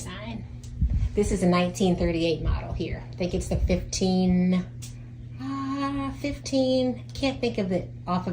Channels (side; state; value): both; identical; correlation 1.00